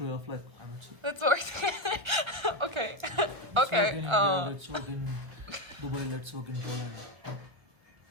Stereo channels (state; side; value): late; left; 1.5 ms